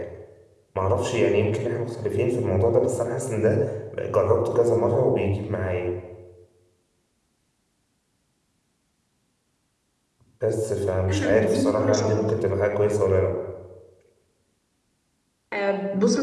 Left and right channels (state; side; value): identical; both; correlation 1.00